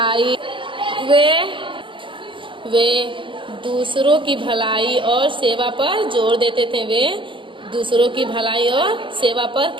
की भलाई और सेवा पर जोर देते थे। वे दूसरों की भलाई और सेवा पर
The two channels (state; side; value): late; left; 0.24 ms